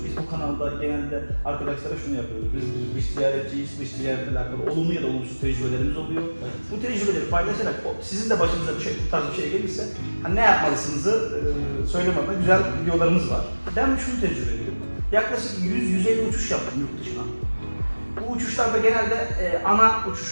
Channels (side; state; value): both; inverted; correlation -1.00